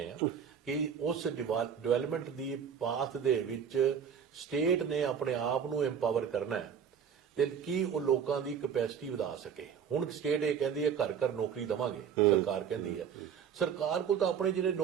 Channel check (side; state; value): left; quieter; 7.6 dB